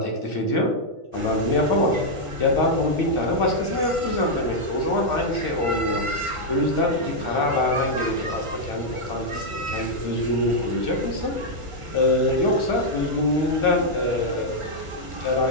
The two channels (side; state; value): left; late; 1.7 ms